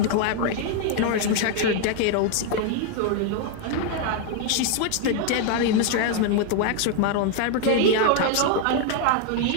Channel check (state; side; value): different; both; correlation 0.00